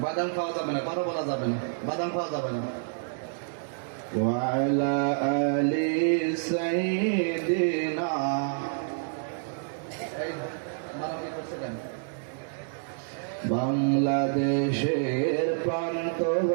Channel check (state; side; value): silent; left; 59 dB below the other